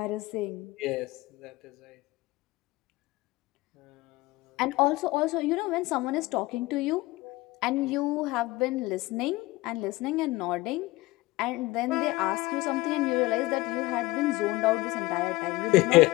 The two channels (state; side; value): quieter; right; 20.0 dB